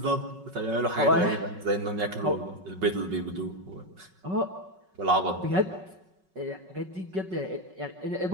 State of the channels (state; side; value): late; left; 5.4 ms